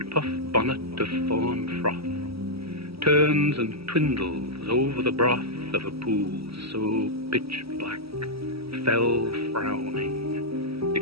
bonnet of fawn froth turns and twindles over the broth of a pool so pitch-black, fell frowning,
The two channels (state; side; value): late; left; 0.76 ms